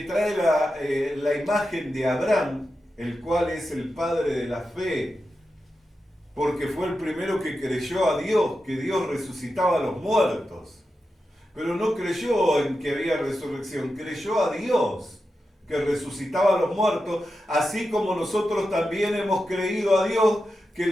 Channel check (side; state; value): both; normal; correlation 0.90